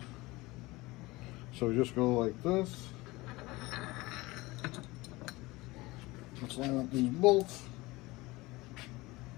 So we just go like this. Let's line up these bolts.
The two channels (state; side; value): quieter; right; 21.1 dB